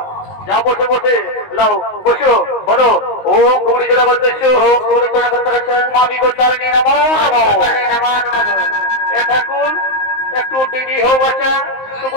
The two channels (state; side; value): late; right; 19 ms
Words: যা বটে বটে লাও বসো। বলো ও খুকড়ি ছোড়া করতেছ, ও খুকড়ি ছোড়া করতে মাবি গোত্রানি নমো নমো নমো নমো। এ ঠাকুর একটু দিদি হো বাচ্চা তোকে